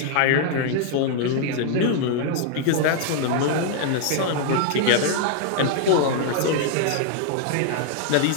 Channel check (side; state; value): both; different; correlation 0.00